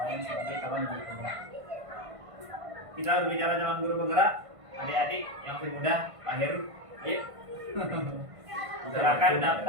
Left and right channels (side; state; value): left; late; 1.5 ms